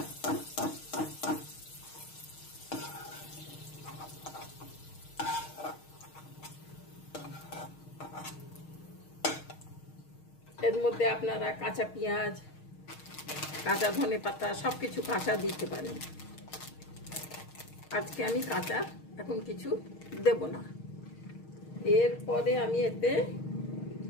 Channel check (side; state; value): right; late; 6.4 ms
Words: এর মধ্যে আপনারা কাঁচা পেঁয়াজ, কাঁচা ধনে পাতা সবকিছু কাঁচা দিতে পারেন। আজকে আমি কাঁচা এখন কিছু দেব না। এরপরে আমি এতে